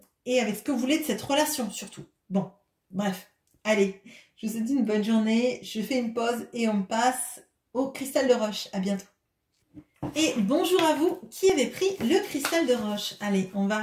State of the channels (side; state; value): both; identical; correlation 1.00